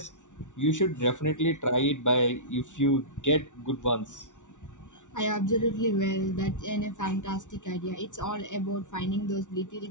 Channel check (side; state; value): right; late; 0.86 ms